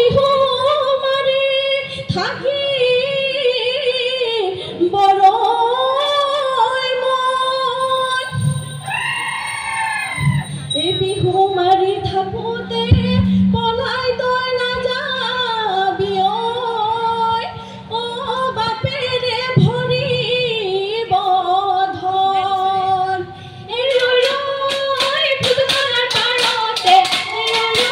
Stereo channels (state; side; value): identical; both; correlation 1.00